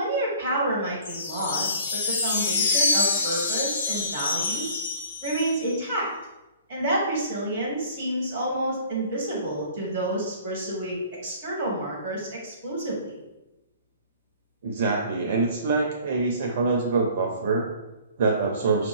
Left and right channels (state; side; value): inverted; both; correlation -0.50